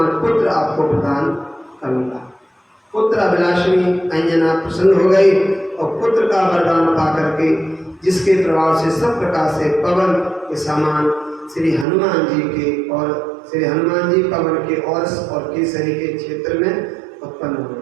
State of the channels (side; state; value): left; drops out; at 11.9 s